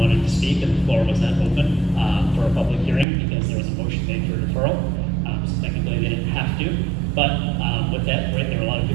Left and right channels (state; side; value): drops out; left; at 3.1 s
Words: to speak, and the floor was not open for a public hearing because there was a motion made for deferral. So technically they didn't have to. But with that, right, there were a lot of